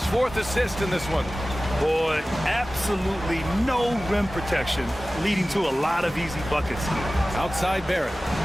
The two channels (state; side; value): normal; both; correlation 0.96